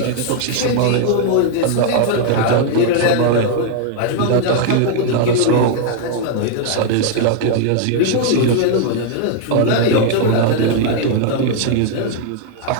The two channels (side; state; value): both; different; correlation 0.00